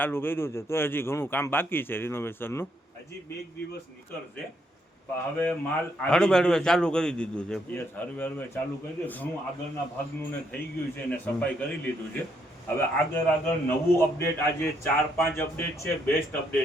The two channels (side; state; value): both; normal; correlation 0.74